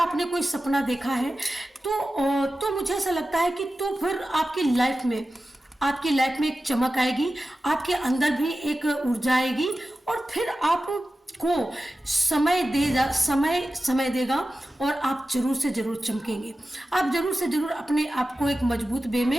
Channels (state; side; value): normal; both; correlation 0.94